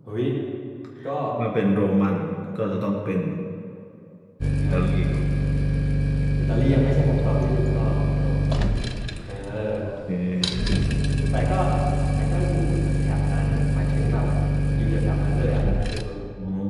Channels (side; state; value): both; identical; correlation 1.00